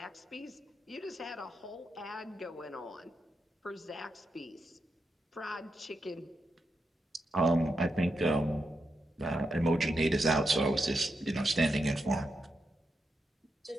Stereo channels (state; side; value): normal; both; correlation 0.85